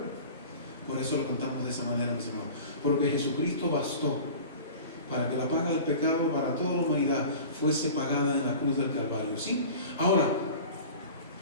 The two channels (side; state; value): both; inverted; correlation -0.38